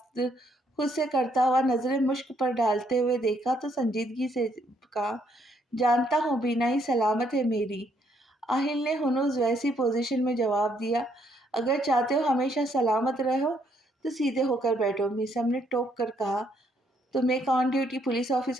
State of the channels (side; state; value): both; normal; correlation 0.71